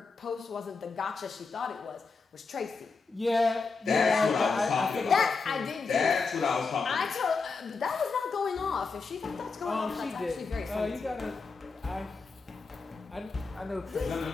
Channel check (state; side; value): quieter; right; 4.5 dB